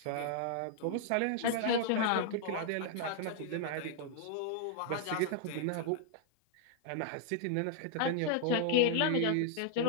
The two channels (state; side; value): different; both; correlation 0.00